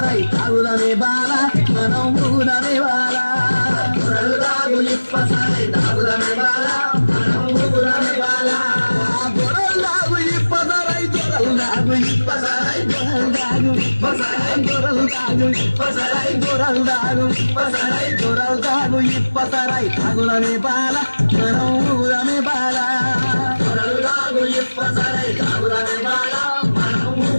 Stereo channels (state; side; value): inverted; both; correlation -1.00